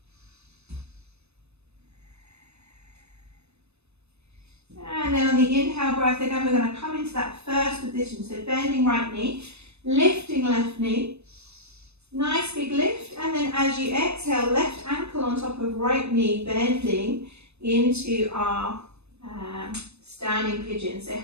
And then on the inhale breath, again, we're going to come into that first position. So bending right knee, lifting left knee. Nice big lift. And then as you exhale, left ankle on top of right knee, bending into our standing pigeon. So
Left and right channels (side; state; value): left; late; 0.80 ms